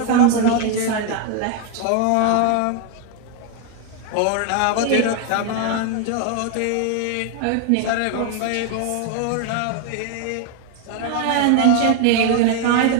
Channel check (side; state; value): both; different; correlation 0.01